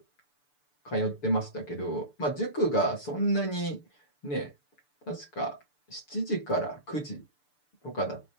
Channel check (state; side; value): late; right; 6.8 ms